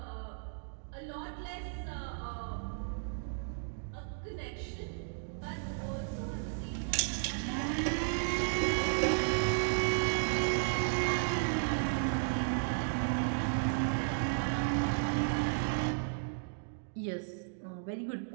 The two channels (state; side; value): silent; left; digital silence